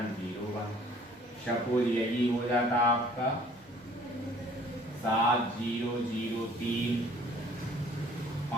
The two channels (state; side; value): normal; both; correlation 0.55